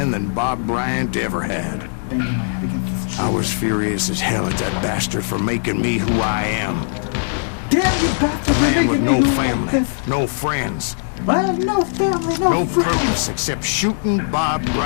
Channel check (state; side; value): silent; right; digital silence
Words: than Bob Bryant ever had. Banging my head against this tree. I was furious as hell at that bastard for making me who I am. Damn you bastard! A man with no making me family, like this. no friends, I have no family, no friends. purpose except shooting Bob